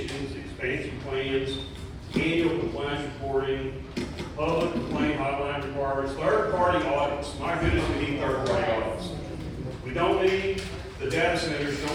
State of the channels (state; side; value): identical; both; correlation 1.00